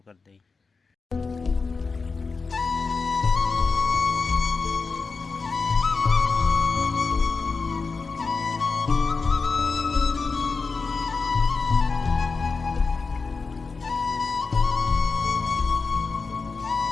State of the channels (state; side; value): quieter; right; 4.5 dB